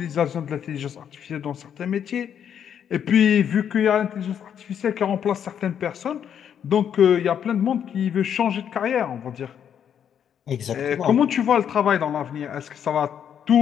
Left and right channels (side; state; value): right; quieter; 8.7 dB